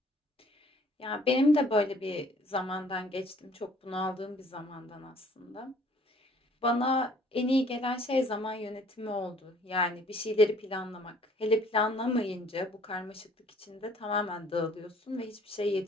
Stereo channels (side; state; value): both; normal; correlation 0.57